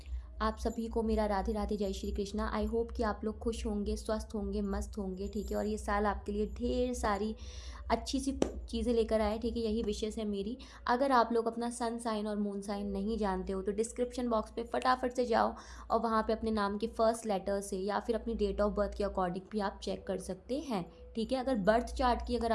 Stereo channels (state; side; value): identical; both; correlation 1.00